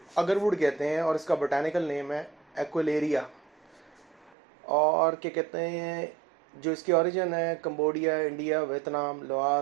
अगरवुड कहते हैं और इसका बोटानिकल नेम है एक्वेलेरिया। और क्या कहते हैं, जो इसकी ओरिजिन है Cambodia, India, Vietnam,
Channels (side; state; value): left; drops out; at 4.4 s